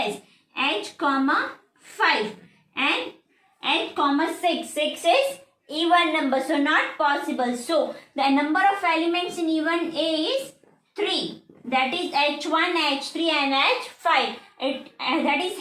H comma 5. And H comma 6. 6 is even number. So not possible. So the number of elements in even A is 3. That is H1, H3 and H5. That is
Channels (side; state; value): both; identical; correlation 1.00